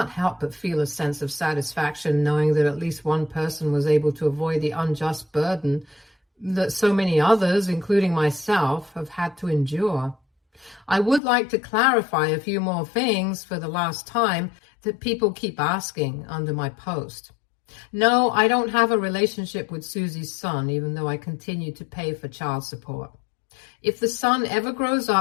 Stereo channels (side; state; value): right; drops out; at 11.2 s